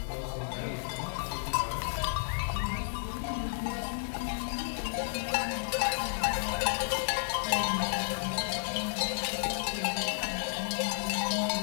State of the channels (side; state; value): right; silent; digital silence